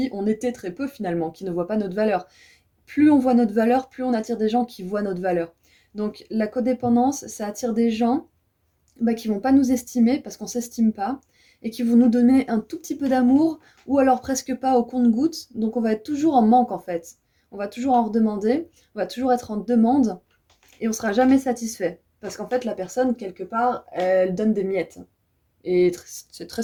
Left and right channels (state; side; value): identical; both; correlation 1.00